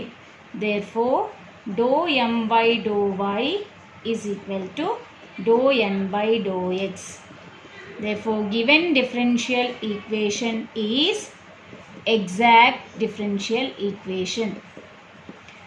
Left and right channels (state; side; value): identical; both; correlation 1.00